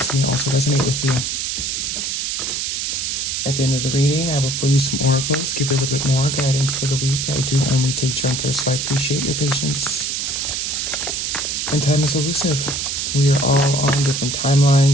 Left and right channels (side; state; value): right; noise; hiss, 1 dB below the sound